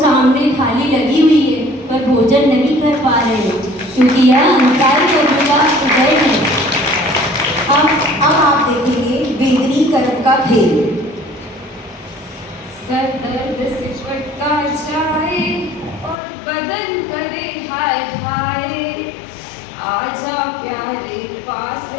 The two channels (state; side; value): drops out; right; at 16.2 s